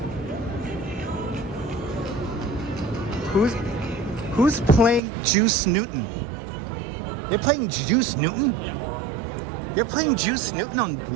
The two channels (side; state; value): left; drops out; at 5.0 s